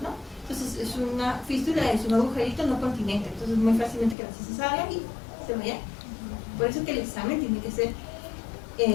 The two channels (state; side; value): drops out; right; at 4.2 s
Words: ¿no? Entonces es una fístula, es un agujerito no continente, entonces muy fácilmente que la heces salga y se vaya. Por eso que el examen tiene que ser